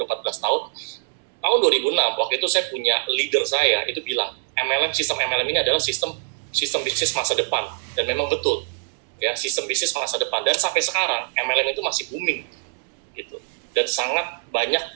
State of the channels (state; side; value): silent; left; 63 dB below the other